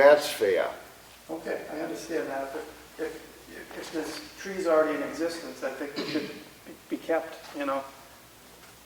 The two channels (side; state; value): both; identical; correlation 1.00